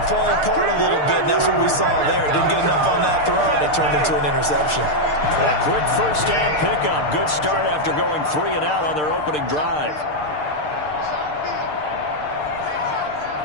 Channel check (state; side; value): late; right; 6.6 ms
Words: fall apart a little bit, and that's what we saw there. Didn't get enough on that throw, and it turned into an interception. A quick first down pickup. Good start after going 3 and out on their opening drive.